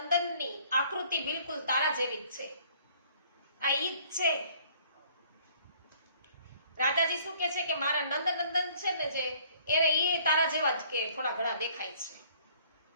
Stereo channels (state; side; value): inverted; both; correlation -0.57